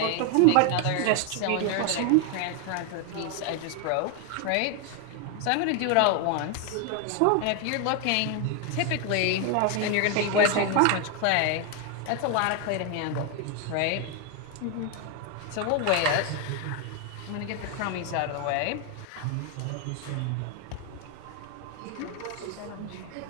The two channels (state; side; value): different; both; correlation 0.01